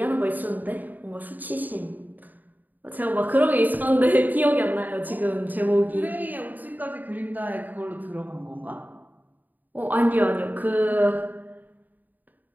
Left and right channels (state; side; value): late; left; 0.085 ms